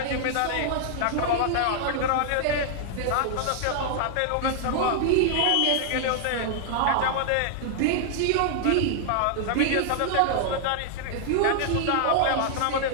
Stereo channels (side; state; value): both; different; correlation 0.00